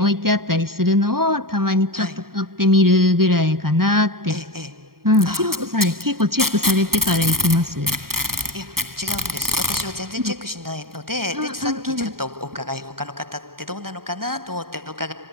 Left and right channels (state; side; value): late; left; 0.93 ms